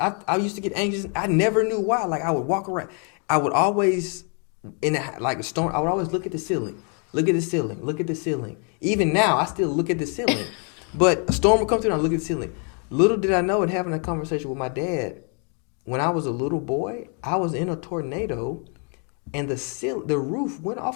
I used to get anxious. I never knew why. Like I would walk around. I would always, a storm, I would always look at the ceiling. Look at the ceiling. Look at the ceiling. Even now, I still look at the ceiling. But a storm would come through and I look at the ceiling. Little did I know, in having a conversation with my dad, when I was a little boy, I was in a tornado and the roof went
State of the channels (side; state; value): right; quieter; 39.8 dB